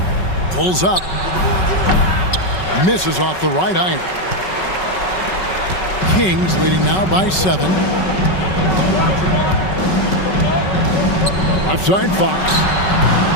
Pulls up. Misses off the right iron. Kings leading now by 7. Left side Fox.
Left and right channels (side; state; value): right; late; 5.3 ms